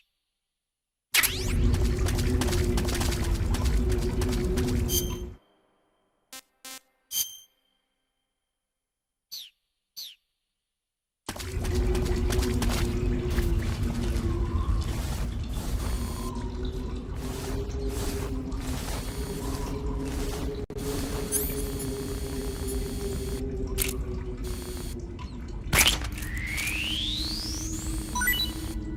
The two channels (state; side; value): identical; both; correlation 1.00